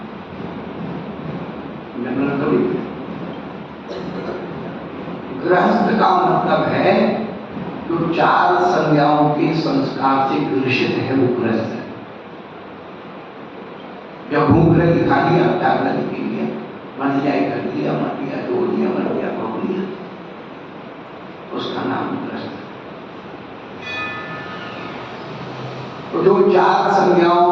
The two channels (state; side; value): identical; both; correlation 1.00